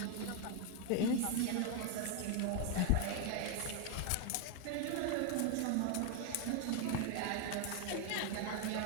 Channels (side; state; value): both; different; correlation 0.01